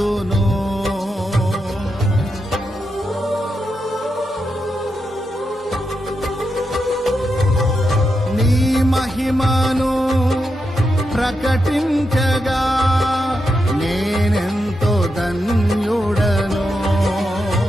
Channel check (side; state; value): both; normal; correlation 0.85